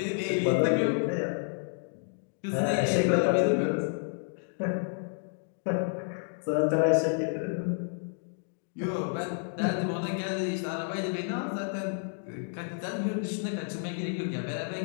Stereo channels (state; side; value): silent; right; 56 dB below the other